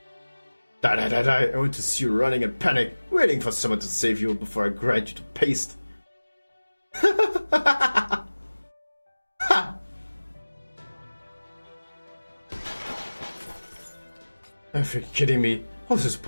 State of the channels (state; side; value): inverted; both; correlation -1.00